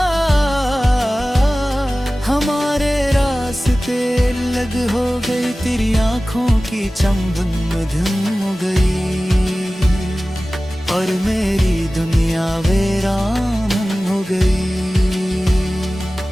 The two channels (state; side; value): normal; both; correlation 0.97